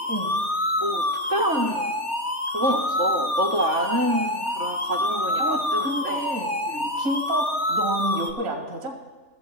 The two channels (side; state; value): left; late; 3.4 ms